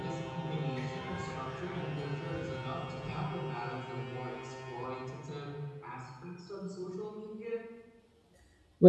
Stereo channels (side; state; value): both; identical; correlation 1.00